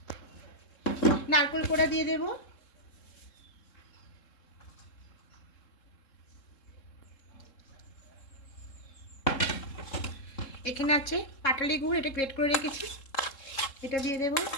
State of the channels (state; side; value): late; right; 3.7 ms